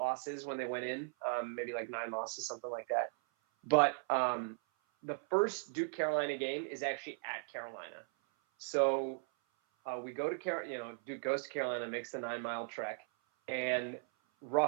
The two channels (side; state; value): left; silent; 53 dB below the other